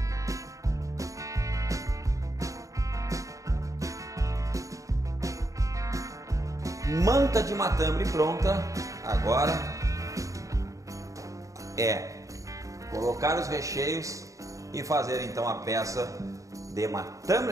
Manta de matambre pronta. Agora é colocar os recheios e fazer então a peça de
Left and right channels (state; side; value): late; left; 0.16 ms